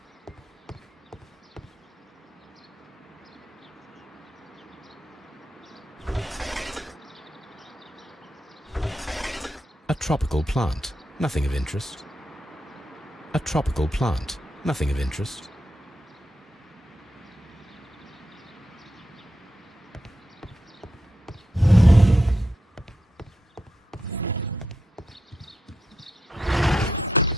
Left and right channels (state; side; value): normal; both; correlation 0.84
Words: A tropical plant. Nothing of interest. A tropical plant. Nothing of interest.